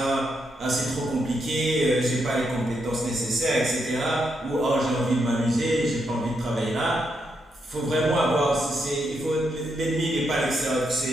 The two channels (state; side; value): normal; both; correlation 0.81